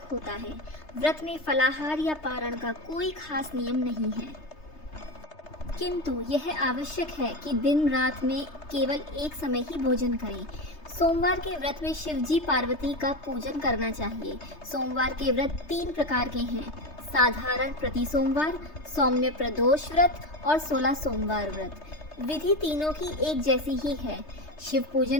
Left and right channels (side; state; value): right; late; 3.3 ms